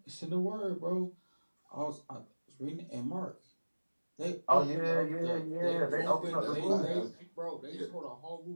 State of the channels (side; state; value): both; inverted; correlation -1.00